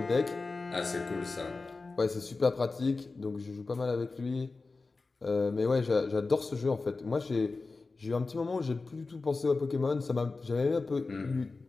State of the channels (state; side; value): quieter; right; 3.8 dB